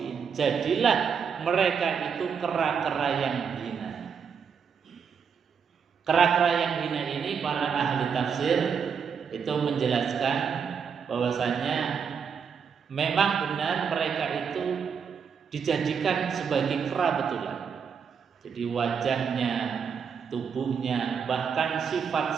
Jadilah mereka itu kera-kera yang hina. Kera-kera yang hina ini para ahli tafsir itu menjelaskan bahwasanya memang benar mereka itu dijadikan sebagai kera betulan. Jadi wajahnya, tubuhnya, bahkan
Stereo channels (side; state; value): left; quieter; 6.6 dB